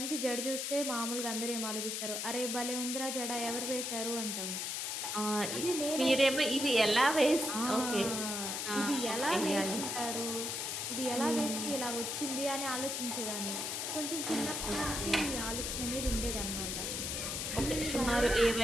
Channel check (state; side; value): noise; left; hiss, 2 dB below the sound